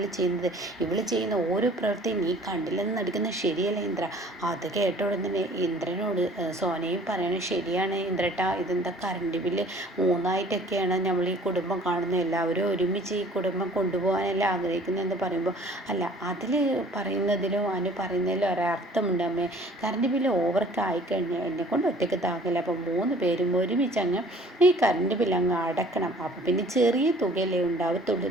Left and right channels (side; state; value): both; normal; correlation 0.52